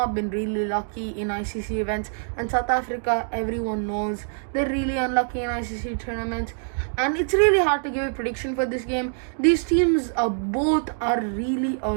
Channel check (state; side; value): silent; left; digital silence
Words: been really lucky in ICC events. And South Africa, everyone knows, they're really unlucky in ICC tournaments. And it's really hard to give a prediction for this game. These teams both are really